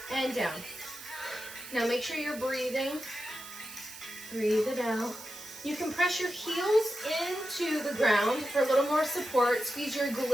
and down. Now make sure you're breathing. Breathe it out. You can press your heels into the ground for a little more support. Squeeze your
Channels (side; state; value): right; noise; hiss, 14 dB below the sound